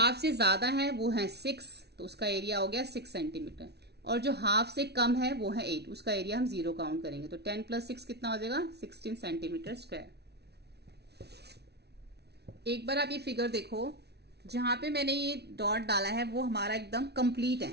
से ज्यादा है वो है 6, तो उसका एरिया हो गया 6 सेंटीमीटर। और जो हाफ से कम है वो है 8, उसका एरिया हम 0 काउंट करेंगे। तो 10 + 6 कितना हो जाएगा? 16 सेंटीमीटर स्क्वायर। एक बार आप ये फिगर देखो, जहां पे मैंने ये डॉट डाला है वो हमारा एकदम कंप्लीट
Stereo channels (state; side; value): late; left; 0.49 ms